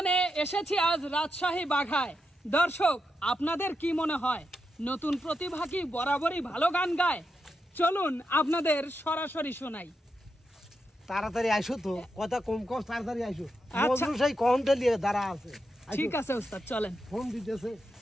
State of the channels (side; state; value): both; normal; correlation 0.85